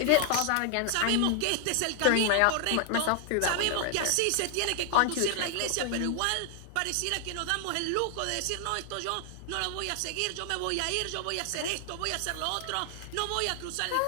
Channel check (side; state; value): both; different; correlation 0.00